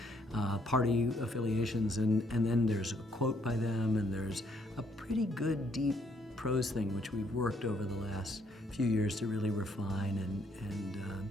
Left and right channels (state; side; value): normal; both; correlation 0.69